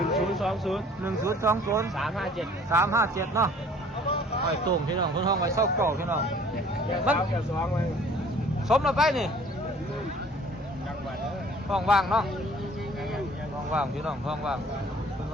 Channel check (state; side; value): normal; both; correlation 0.53